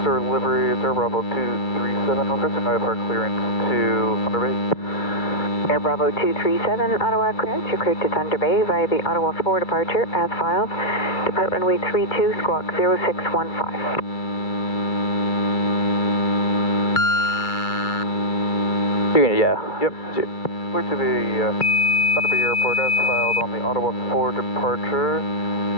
or livery, it's Air Bravo 237, requesting IFR clearance to Thunder Bay. Air Bravo 237, Ottawa clearance. You're cleared to Thunder Bay via the Ottawa 4 departure as filed. Depart runway 32, squawk 0615. Yeah. Yep. Clear to the Thunder Bay Airport as filed on the Ottawa 4 departure.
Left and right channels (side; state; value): right; late; 2.3 ms